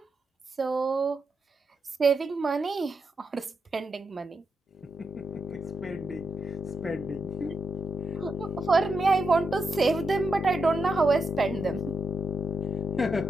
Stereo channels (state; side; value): normal; both; correlation 0.83